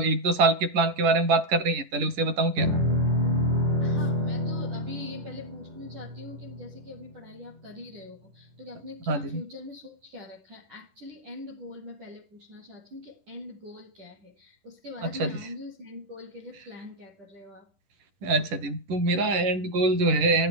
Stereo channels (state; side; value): late; left; 10 ms